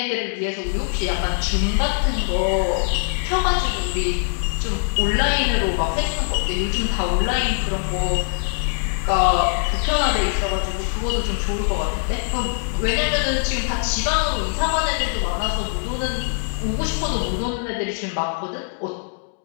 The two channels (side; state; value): right; silent; digital silence